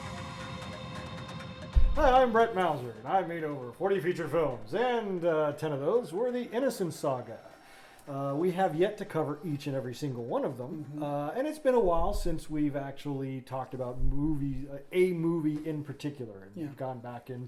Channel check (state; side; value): identical; both; correlation 1.00